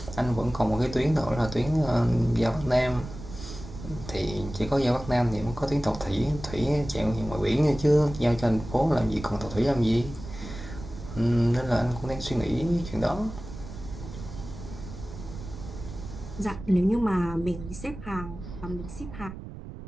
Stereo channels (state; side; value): noise; right; rumble, 12 dB below the sound